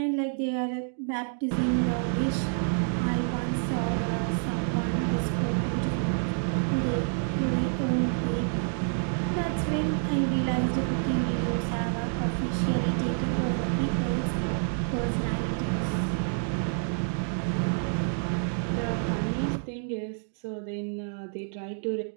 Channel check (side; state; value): left; silent; 59 dB below the other